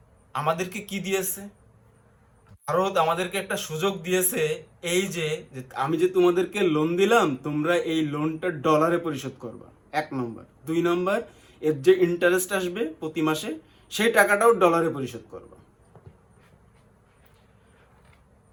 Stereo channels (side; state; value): both; identical; correlation 1.00